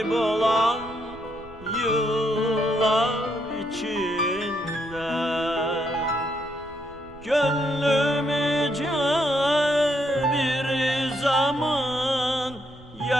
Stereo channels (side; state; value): right; noise; rumble, 22 dB below the sound